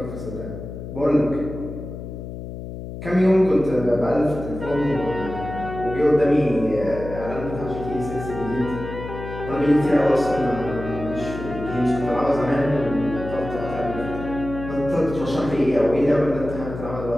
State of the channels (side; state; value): left; noise; hum, 9 dB below the sound